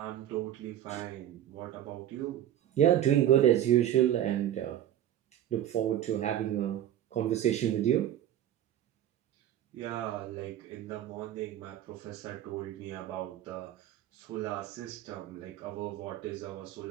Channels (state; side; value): quieter; left; 11.6 dB